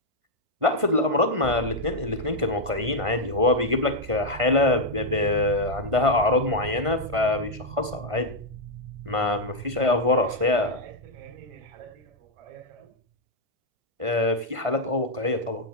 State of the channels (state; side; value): late; left; 1.5 ms